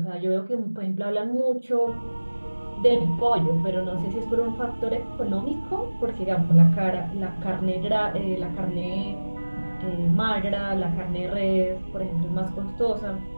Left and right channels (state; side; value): inverted; both; correlation -1.00